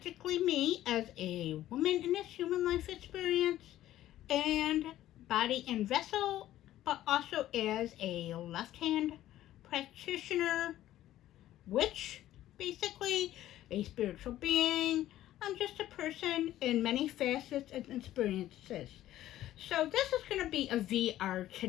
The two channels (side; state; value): right; quieter; 13.6 dB